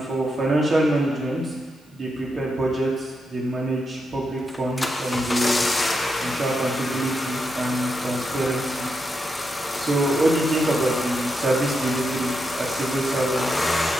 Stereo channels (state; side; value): normal; both; correlation 0.85